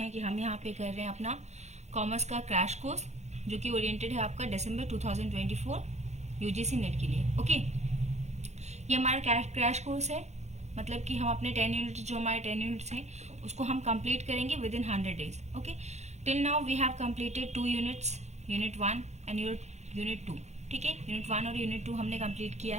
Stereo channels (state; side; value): late; left; 0.33 ms